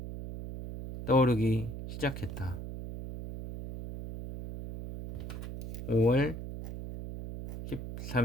떠오르기 시작했다. 5월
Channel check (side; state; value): right; noise; hum, 8 dB below the sound